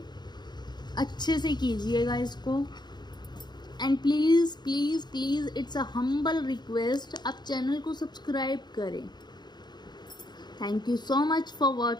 अच्छे से कीजिएगा इसको। And please please please it's a humble request, आप चैनल को सब्सक्राइब करें। Thank you so much for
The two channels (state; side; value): late; right; 0.21 ms